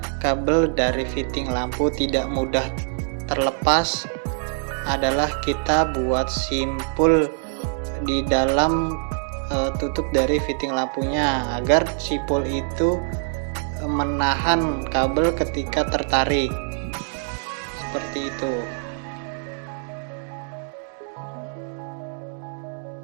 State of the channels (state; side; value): silent; left; 63 dB below the other